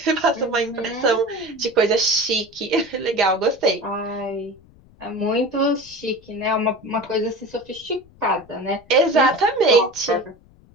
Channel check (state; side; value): noise; left; rumble, 27 dB below the sound